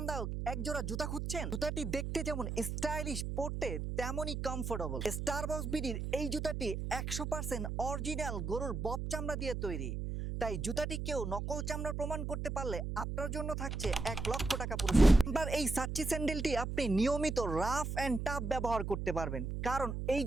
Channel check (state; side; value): noise; right; hum, 3 dB below the sound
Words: একজোড়া জুতা খুঁজছেন? জুতাটি দেখতে যেমন স্টাইলিশ, পরতে তেমনই কমফোর্টেবল। স্টারবক্স বিডির এই জুতাটি 100% অরিজিনাল গরুর বব চামড়া দিয়ে তৈরি। তাই জুতাটি কেউ নকল চামড়ার প্রমাণ করতে পারলে আপনার জন্য থাকছে 1,00,000 টাকা পুরস্কার। এবার এই সাচ্চি স্যান্ডেলটি আপনি নিয়মিত রাফ অ্যান্ড টাফ ব্যবহার করতে পারবেন, কারণ এই